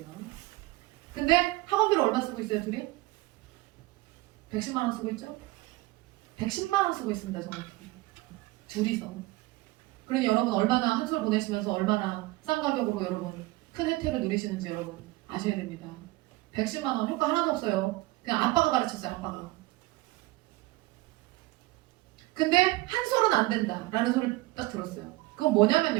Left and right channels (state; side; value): quieter; left; 20.3 dB